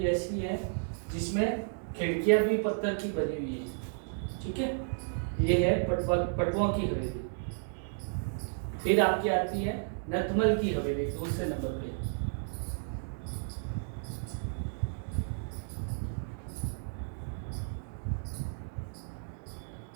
ऐसी है जिसमें खिड़कियां भी पत्थर की बनी हुई है। ठीक है, ये है पटवा की हवेली। फिर आपकी आती है नतमल की हवेली दूसरे नंबर पे।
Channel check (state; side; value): silent; left; digital silence